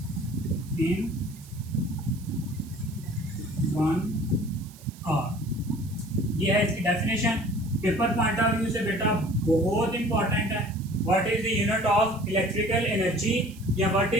इन 1 आवर। ये है इसकी definition. Paper point of view से बेटा बहुत इंपॉर्टेंट है। What is the unit of electrical energy या व्हाट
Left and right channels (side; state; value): right; noise; hiss, 22 dB below the sound